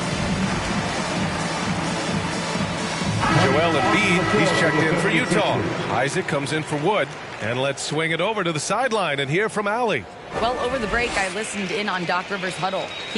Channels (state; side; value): identical; both; correlation 1.00